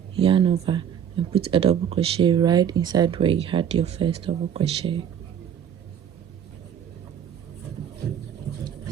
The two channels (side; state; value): left; quieter; 8.8 dB